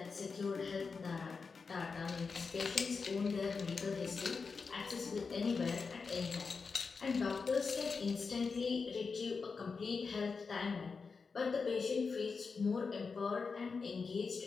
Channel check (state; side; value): quieter; right; 4.9 dB